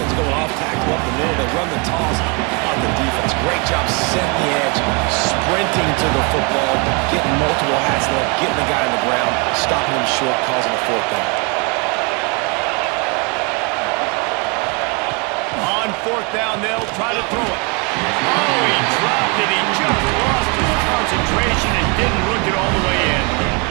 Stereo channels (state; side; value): quieter; left; 32.6 dB